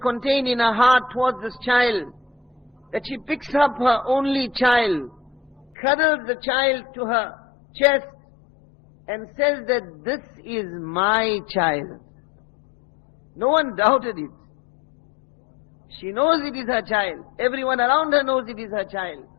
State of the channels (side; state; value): right; drops out; at 5.7 s